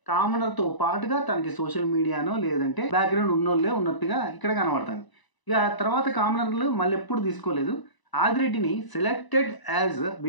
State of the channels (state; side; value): late; right; 1.0 ms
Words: కామనర్తో పాటుగా తనకి సోషల్ మీడియానో లేదంటే బ్యాక్గ్రౌండ్ ఉన్నోళ్ళే ఉన్నట్టుగా ఇక్కడ కనబడుతుంది. ఇక తర్వాత కామనర్లు మళ్ళీ ఎప్పుడు తీసుకోలేదు. ఆదిరెడ్డిని selected as